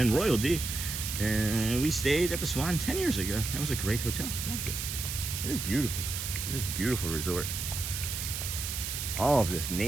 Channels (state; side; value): noise; right; hiss, 4 dB below the sound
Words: Royal D. And we stayed at the Swan 10 years ago. That was a great hotel. Loved it. It is beautiful. It is a beautiful resort. All of this